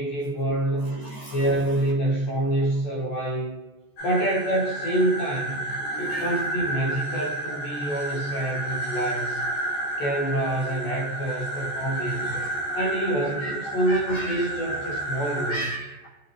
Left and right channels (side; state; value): right; late; 14 ms